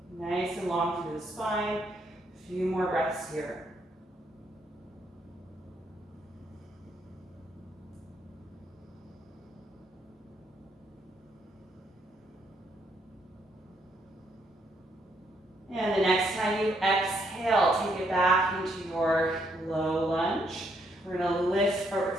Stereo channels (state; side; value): normal; both; correlation 0.74